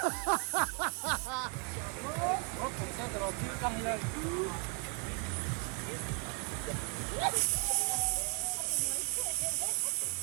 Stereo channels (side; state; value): left; quieter; 32.1 dB